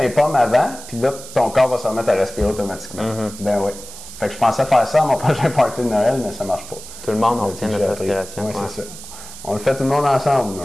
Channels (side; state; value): right; noise; hiss, 14 dB below the sound